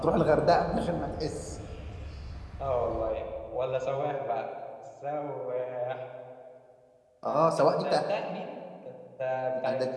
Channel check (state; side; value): identical; both; correlation 1.00